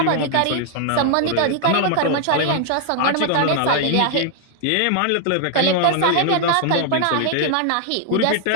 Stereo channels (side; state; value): both; different; correlation 0.00